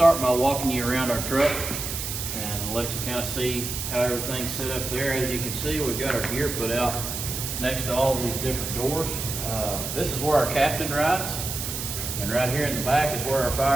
by walking you around our truck and let you kind of see how everything's set up there. As you can see, we've got our gear put out next to all of these different doors. This is where our captain rides, and right here in the back is where our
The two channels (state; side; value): noise; right; hiss, 5 dB below the sound